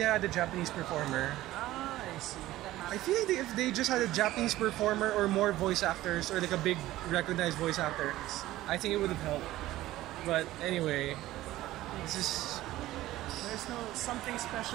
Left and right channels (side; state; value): left; quieter; 15.8 dB